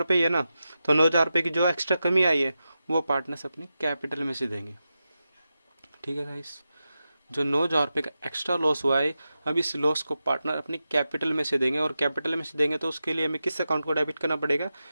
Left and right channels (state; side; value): inverted; both; correlation -0.91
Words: ही है ना, तो 9,000 रुपये की जो एक्स्ट्रा कमी आई है वो पार्टनर्स अपनी कैपिटल में से देंगे। ठीक है गाइस, जो 9,000 रुपये का एक्स्ट्रा लॉस हुआ है, अब इस लॉस को पार्टनर अपनी कैपिटल में से देंगे, और कैपिटल में से देंगे तो उसके लिए हमें किस अकाउंट को डेबिट करना पड़ेगा,